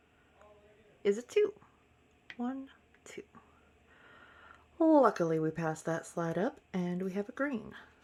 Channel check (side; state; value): both; identical; correlation 1.00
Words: is a 2. 1, 2. Luckily we passed that slide up and we have a green.